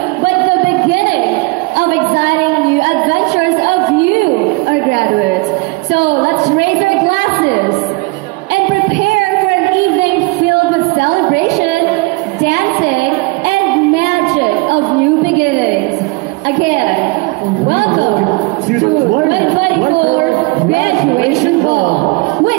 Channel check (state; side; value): quieter; left; 26.3 dB